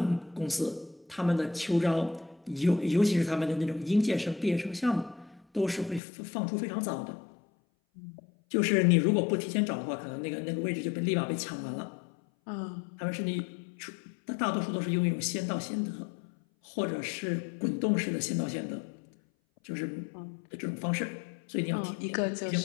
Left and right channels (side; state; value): right; drops out; at 6.0 s